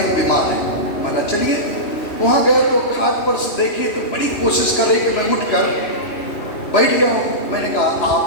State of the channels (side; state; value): right; late; 2.8 ms